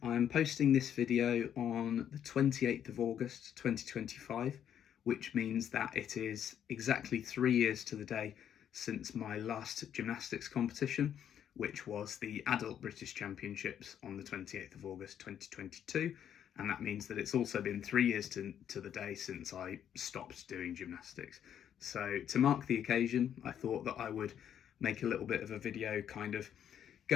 I'm posting this video on the 28th of August 2025, which means that it is exactly 3 years to the day since my last gymnastics competition, which was the Adult British Championships on the 28th of August 2022, and that means that it's also been 3 years to the day since I stopped doing gymnastics. So to mark the occasion, I thought that I would make a little bit of a video kind of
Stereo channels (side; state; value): right; quieter; 9.5 dB